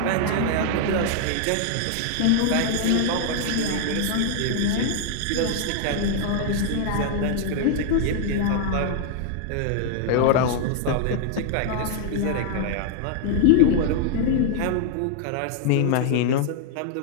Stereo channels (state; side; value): different; both; correlation 0.00